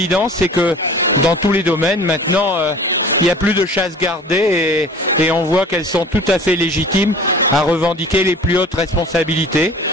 c'est que dans tous les domaines, maintenant, il n'y a plus de chasse gardée et on voit qu'elles sont tout à fait légitimes à revendiquer les plus hautes responsabilités.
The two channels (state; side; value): normal; both; correlation 0.44